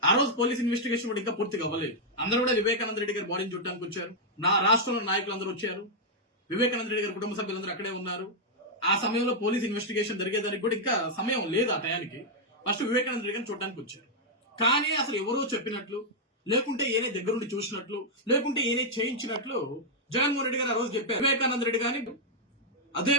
ఆ రోజు పోలీస్ ఇన్వెస్టిగేషన్ కూడా ఇంకా పూర్తిగా అవ్వలేదు. అందరూ కూడా వివేకానంద రెడ్డి గారి బాడీని చూడడానికి వచ్చారు. నా రాష్ట్రంలో నాయకులు అందరూ వచ్చారు. వివేకానంద రెడ్డి గారి కుటుంబ సభ్యులందరూ అక్కడే ఉన్నారు. ఆ సమయంలో పోలీస్ ఇన్వెస్టిగేషన్ జరిగేదానికి కూడా ఇంకా సమయం లేదు. ఆ టయానికి ఫస్ట్ వివేకానంద రెడ్డి గారిని చూడడానికి వచ్చారు. కానీ అసలు ఎవరో చెప్పినట్లు, లేకుంటే ఏనే దగ్గరుండి చూసినట్లు, లేకుంటే ఏనే చేయించినట్లు జగన్మోహన్ రెడ్డి గారు ఆ రోజు చెప్పారు. వివేకానంద రెడ్డి గారిని అదే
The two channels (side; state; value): both; normal; correlation -0.04